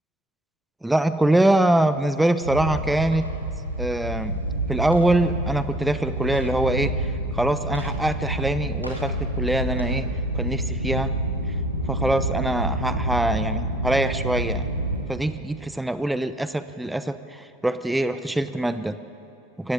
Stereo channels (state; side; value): normal; both; correlation 0.62